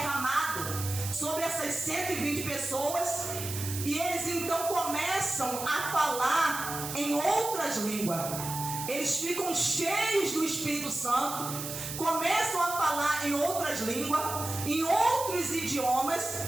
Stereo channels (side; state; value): right; noise; hiss, 7 dB below the sound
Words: sobre essas 120 pessoas, e eles então começam a falar em outras línguas. Eles ficam cheios do Espírito Santo, começam a falar em outras línguas, em outros idiomas,